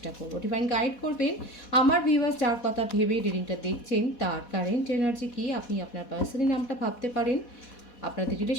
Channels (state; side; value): late; right; 4.1 ms